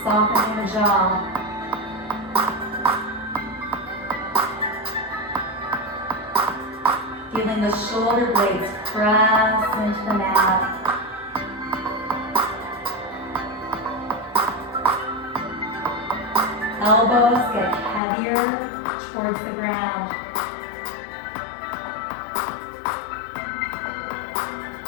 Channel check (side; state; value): right; drops out; at 18.0 s